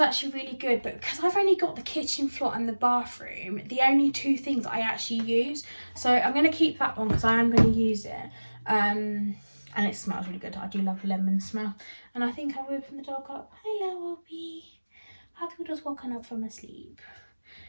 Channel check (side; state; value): both; inverted; correlation -1.00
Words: really good, but because I've only got the kitchen floor and the bathroom, the only 2 things I actually use, so I'm going to keep that one because I am going to use it. And it smells really good. I do love the lemon smell. And I think I've woken the dog up. Hello, Obi. Have you just woken up from a sleep?